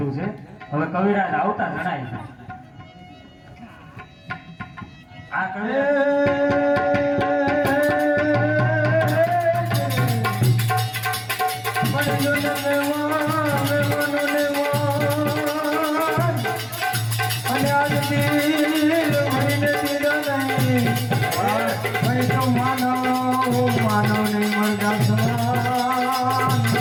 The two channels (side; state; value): both; identical; correlation 1.00